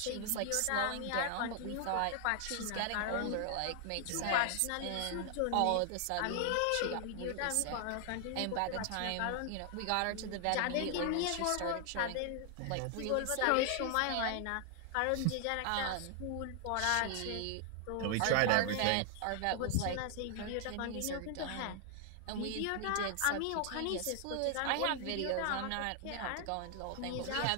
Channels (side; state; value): both; different; correlation 0.00